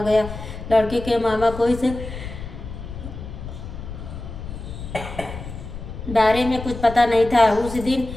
गया। लड़के के मामा को इस बारे में कुछ पता नहीं था। उस दिन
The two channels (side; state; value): left; noise; rumble, 10 dB below the sound